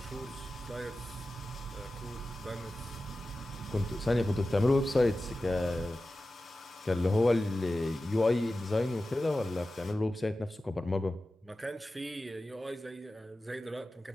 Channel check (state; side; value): normal; both; correlation 0.94